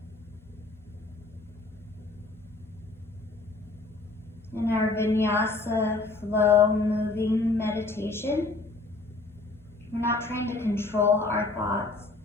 In our vinyasa flow moving meditation, we're not trying to control our thoughts.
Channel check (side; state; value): right; quieter; 3.4 dB